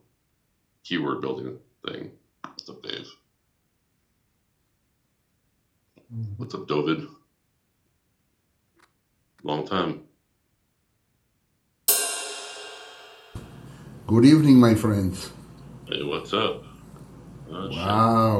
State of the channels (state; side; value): identical; both; correlation 1.00